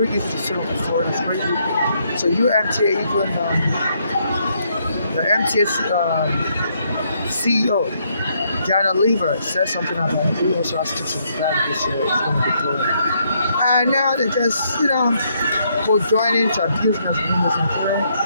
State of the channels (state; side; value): inverted; both; correlation -0.73